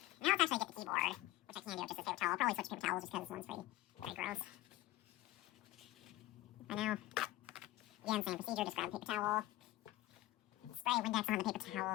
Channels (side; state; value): right; quieter; 16.6 dB